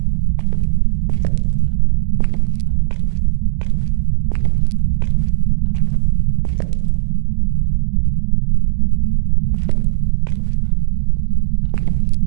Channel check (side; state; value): left; silent; digital silence